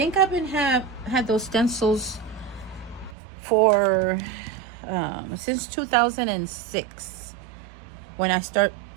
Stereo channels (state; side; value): drops out; left; at 3.2 s